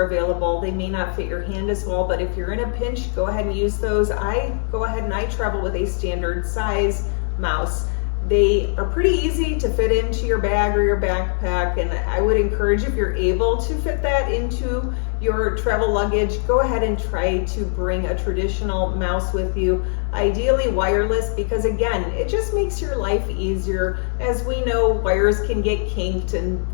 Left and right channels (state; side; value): silent; right; digital silence